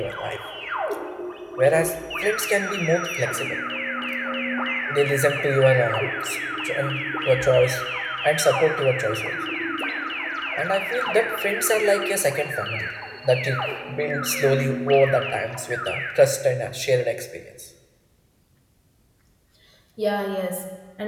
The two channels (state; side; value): identical; both; correlation 1.00